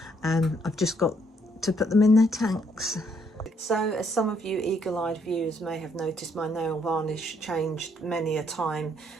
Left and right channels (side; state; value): both; normal; correlation 0.70